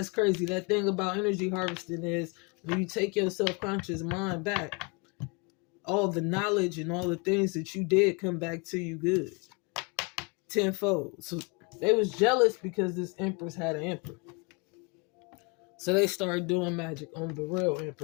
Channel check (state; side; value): quieter; right; 30.6 dB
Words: crazy. That thing about energy harvesting is when you take your self-conscious mind back, all the knowledge and all the things that you did come back to you good. Tenfold. So they was jealous because this Empress had an emperor. So they started doing magic on the real